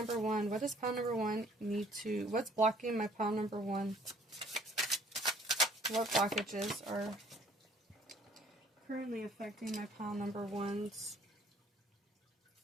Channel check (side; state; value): both; normal; correlation 0.58